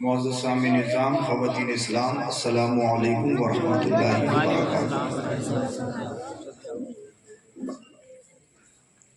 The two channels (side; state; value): both; identical; correlation 1.00